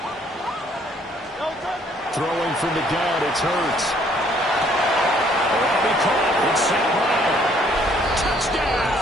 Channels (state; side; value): normal; both; correlation 0.63